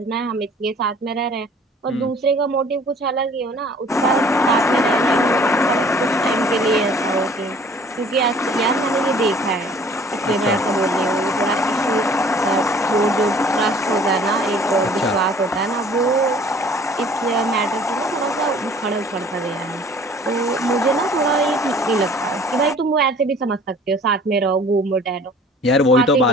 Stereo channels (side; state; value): both; normal; correlation 0.52